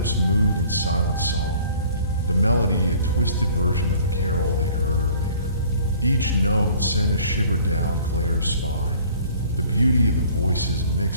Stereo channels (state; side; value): inverted; both; correlation -0.53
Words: moved in silent song, the melody a twisted version of the carol they'd heard earlier. Each note sent a shiver down Claire's spine, the beauty of the voices